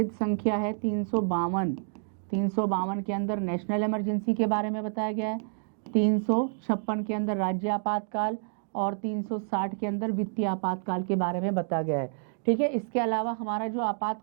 संख्या है 352 के अंदर नेशनल इमरजेंसी के बारे में बताया गया है। 356 के अंदर राज्य आपातकाल और 360 के अंदर वित्तीय आपातकाल के बारे में बताया गया है। ठीक है, इसके अलावा हमारा जो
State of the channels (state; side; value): silent; left; digital silence